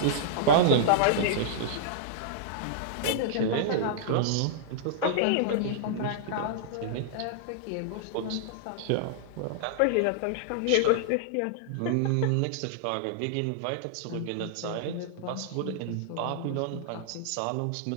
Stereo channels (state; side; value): different; both; correlation -0.01